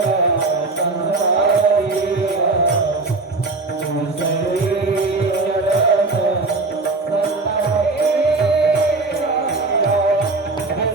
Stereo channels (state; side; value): quieter; left; 3.5 dB